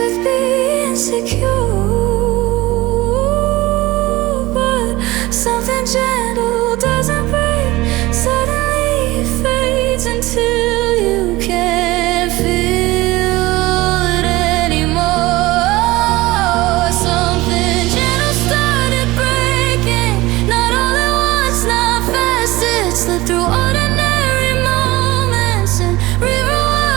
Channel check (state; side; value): quieter; left; 19.6 dB